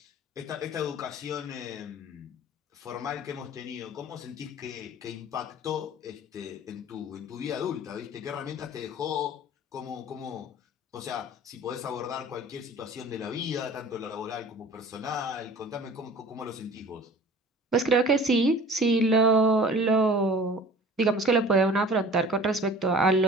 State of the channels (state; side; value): normal; both; correlation 0.44